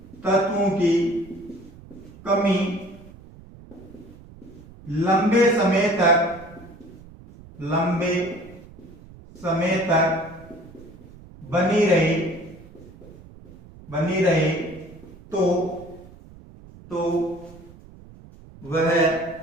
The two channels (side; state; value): right; noise; rumble, 20 dB below the sound